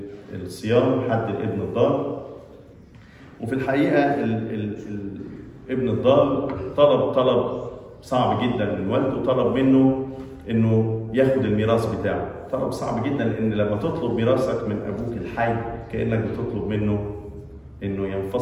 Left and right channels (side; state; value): both; identical; correlation 1.00